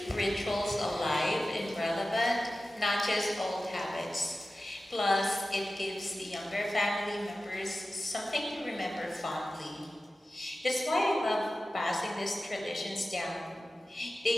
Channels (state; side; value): normal; both; correlation 0.95